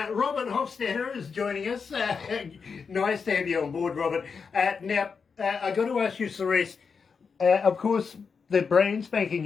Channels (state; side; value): quieter; right; 5.6 dB